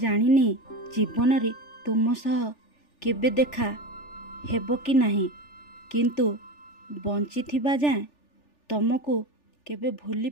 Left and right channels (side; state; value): right; late; 3.4 ms